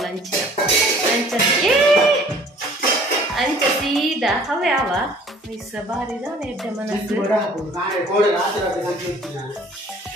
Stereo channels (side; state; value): both; normal; correlation 0.53